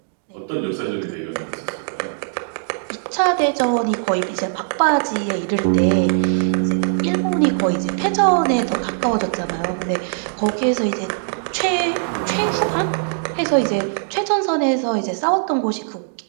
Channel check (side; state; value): left; silent; digital silence